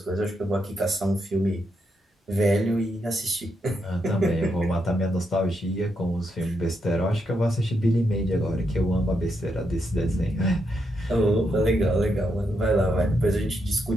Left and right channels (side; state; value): both; normal; correlation 0.81